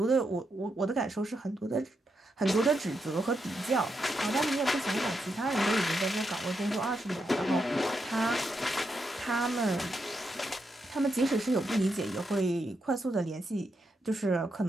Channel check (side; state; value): both; normal; correlation 0.83